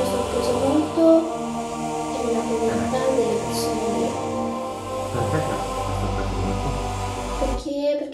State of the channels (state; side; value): identical; both; correlation 1.00